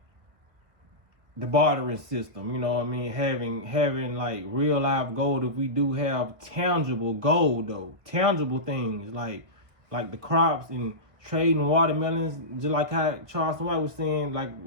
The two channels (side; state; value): left; late; 1.6 ms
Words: the bartering system, you know what I mean? Having like real life gold. If we do have tangible gold though, tangible things like the crops and trading watermelons, just like how Charles White was saying, like